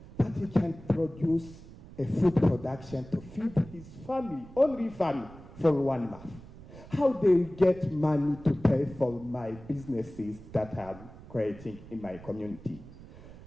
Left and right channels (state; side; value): noise; right; rumble, 18 dB below the sound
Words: but he can produce a food production to feed his family, only family, for 1 month. How they get money to pay for my businesses that I'm creating in my community?